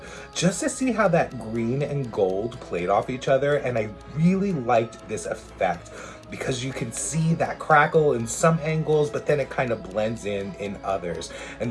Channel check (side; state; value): both; identical; correlation 1.00